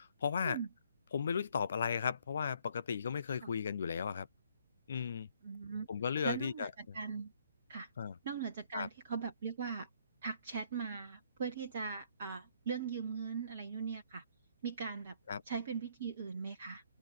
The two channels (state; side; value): inverted; both; correlation -0.67